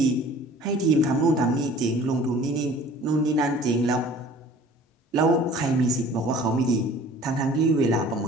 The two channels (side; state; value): both; normal; correlation 0.48